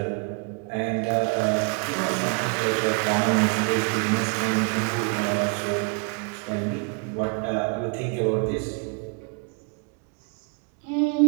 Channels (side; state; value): left; quieter; 36.9 dB